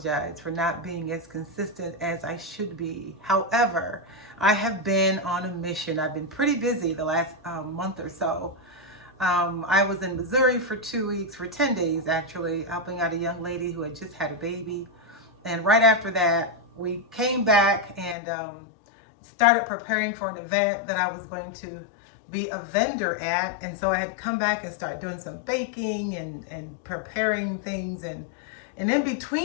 for not being as consistent as I should be. However, I have been on a mission. I've been pretty busy the last month or so. I was in Missouri for 2 weeks, for 10 days actually, helping out a young lady who had just had a baby. And right after that, we came back and started preparing for an event that I was going to be a vendor at. And so I had to come back and start doing some baking and preparing things. And in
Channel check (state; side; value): drops out; right; at 18.2 s